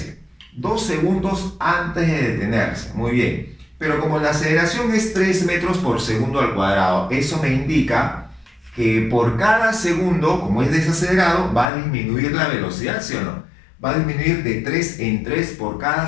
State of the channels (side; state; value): right; drops out; at 11.7 s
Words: 2 segundos antes de detenerse. Muy bien. Pero como la aceleración es 3 metros por segundo al cuadrado, eso me indica que por cada segundo, como es desacelerado, va a disminuir la velocidad, ¿sí o no? Va a disminuir de 3 en 3 por cada